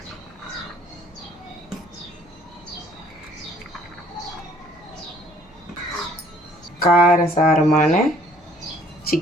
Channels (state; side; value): normal; both; correlation 0.58